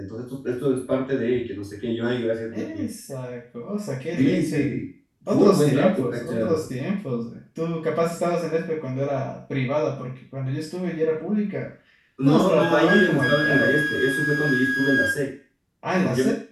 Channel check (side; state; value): both; identical; correlation 1.00